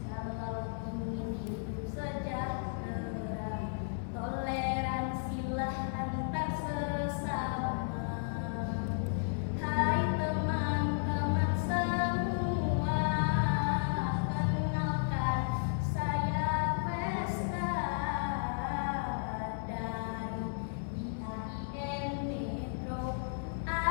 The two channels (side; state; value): right; silent; digital silence